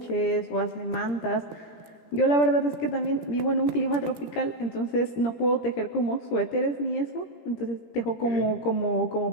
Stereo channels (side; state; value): right; late; 17 ms